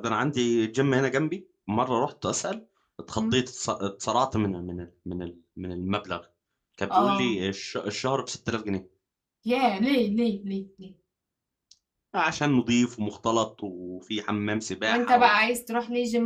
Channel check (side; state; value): both; identical; correlation 1.00